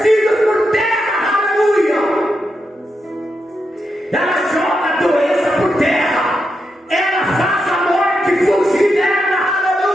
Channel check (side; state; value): both; normal; correlation 0.85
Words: por terra, aleluia. Ela joga a doença por terra, ela faz a morte fugir dela,